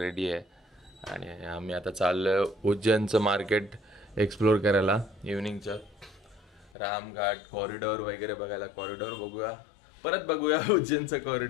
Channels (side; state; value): right; drops out; at 6.7 s